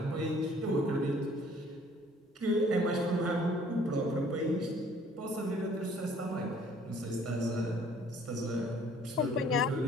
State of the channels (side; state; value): both; normal; correlation 0.57